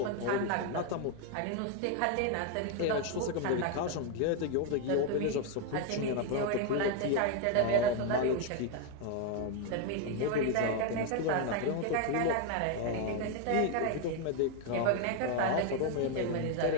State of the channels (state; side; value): different; both; correlation 0.01